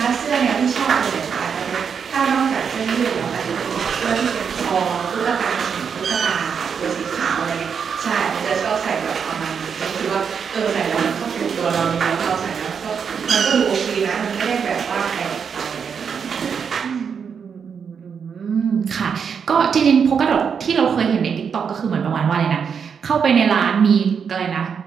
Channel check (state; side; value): quieter; left; 6.7 dB